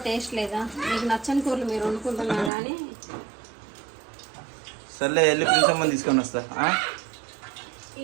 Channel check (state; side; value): drops out; left; at 2.5 s